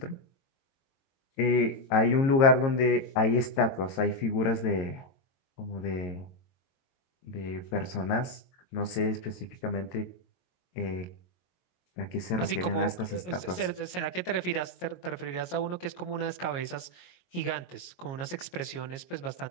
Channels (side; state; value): right; late; 22 ms